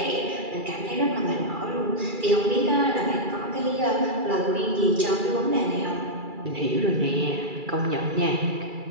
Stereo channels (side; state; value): left; late; 2.3 ms